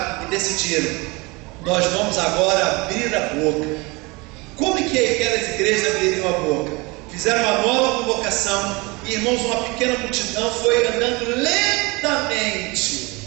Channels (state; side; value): quieter; left; 25.8 dB